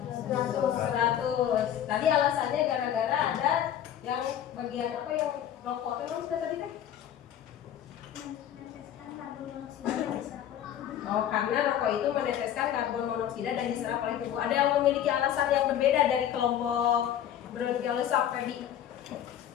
100. Tadi alasannya gara-gara ada yang bagian apa yang rokok itu sudah tadi teh? Oh, karena rokok itu meneteskan karbon monoksida dan diserap oleh tubuh. Ada yang memiliki alasan yang berbeda dari kelompok Bronchiolus Feby?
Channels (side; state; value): right; quieter; 10.5 dB